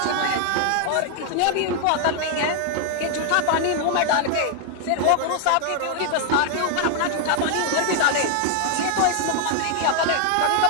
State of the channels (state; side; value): different; both; correlation 0.00